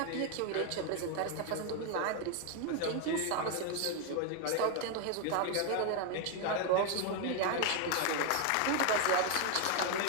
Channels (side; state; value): both; different; correlation 0.01